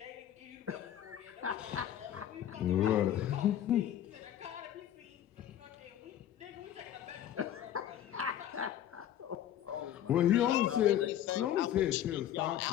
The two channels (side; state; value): right; quieter; 11.1 dB